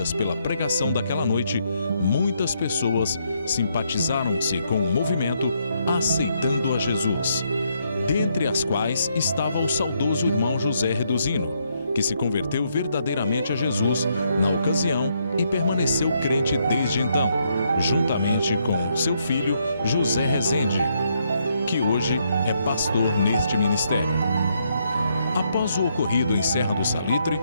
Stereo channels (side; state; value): both; inverted; correlation -0.76